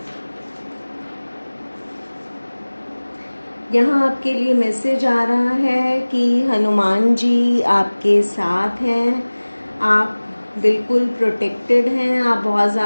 यहाँ आपके लिए मैसेज आ रहा है कि हनुमान जी आपके साथ हैं। आप बिल्कुल प्रोटेक्टेड हैं। आप बहुत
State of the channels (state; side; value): inverted; both; correlation -1.00